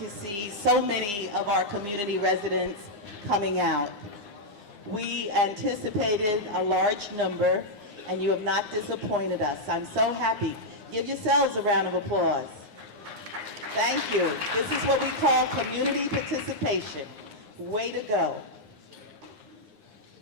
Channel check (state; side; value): late; left; 9.8 ms